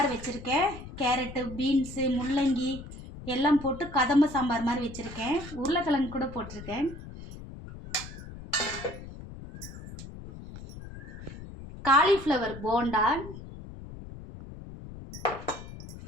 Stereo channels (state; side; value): noise; left; rumble, 13 dB below the sound